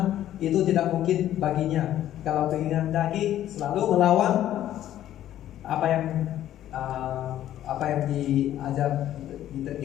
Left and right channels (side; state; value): right; quieter; 12.3 dB